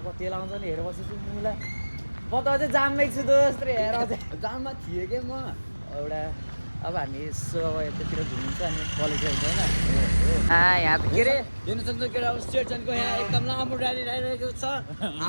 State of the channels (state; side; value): inverted; both; correlation -1.00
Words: कति लाउँछ नि हेरेर बसेछु मुला म त अझै जाममै छु दोस्त हेर अझै जाममा थिएँ कि म एउटा अब हामी यसो अब यतातिर घुमिन्छ अनि कलेज जान्छ होइन यहाँ त के अरे हेर्न सक्छ केटा अब स्टेसनको यहाँ एकदम लामो र्याली आइरहेको छ